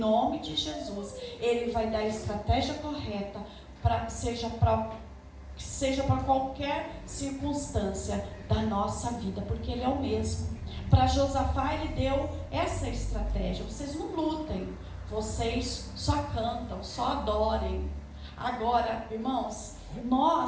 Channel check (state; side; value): identical; both; correlation 1.00